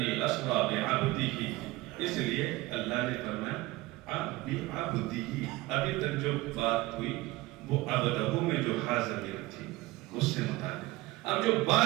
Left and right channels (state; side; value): quieter; left; 19.6 dB